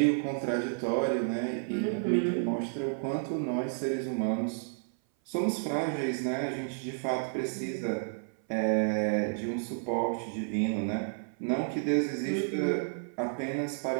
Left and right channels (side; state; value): left; silent; 56 dB below the other